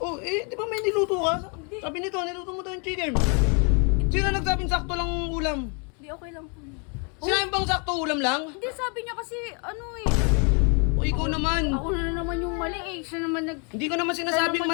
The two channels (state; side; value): quieter; right; 36.3 dB